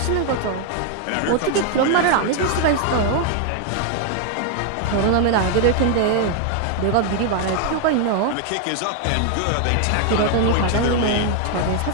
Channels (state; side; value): different; both; correlation 0.00